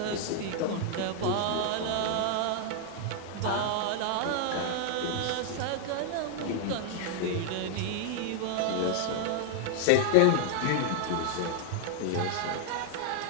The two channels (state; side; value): different; both; correlation 0.00